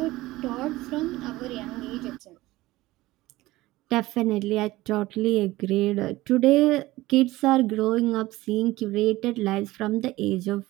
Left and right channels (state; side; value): quieter; left; 18.3 dB